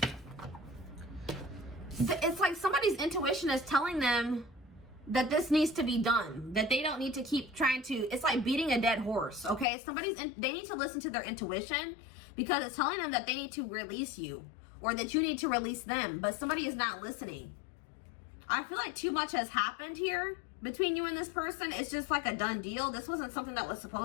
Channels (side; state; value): right; drops out; at 9.7 s